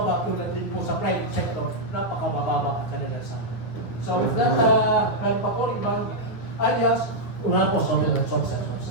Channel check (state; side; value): late; right; 9.3 ms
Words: tulad din po sa private sector, napakabababa ang kanilang sahod. So with that, meron pa po ibang alias, una po, sorry.